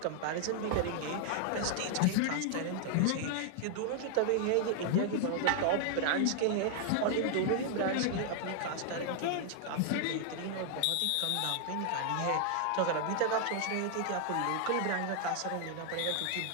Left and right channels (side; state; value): both; different; correlation 0.00